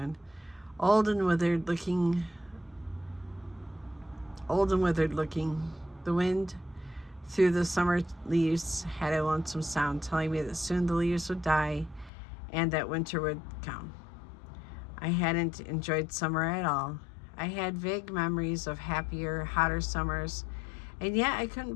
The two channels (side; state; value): right; drops out; at 12.1 s